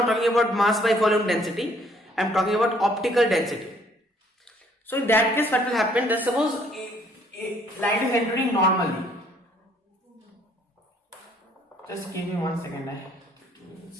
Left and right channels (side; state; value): both; normal; correlation 0.62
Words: talking about mass by volume density. I am talking about optical density. So in that case, what will happen? That suppose light is entering normally. Just give me 1 second.